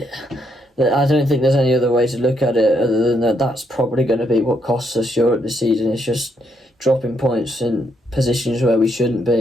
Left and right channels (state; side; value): normal; both; correlation 0.75